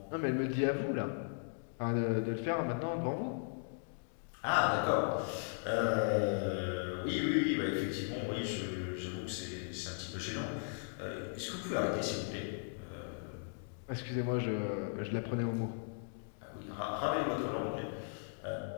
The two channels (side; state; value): right; silent; digital silence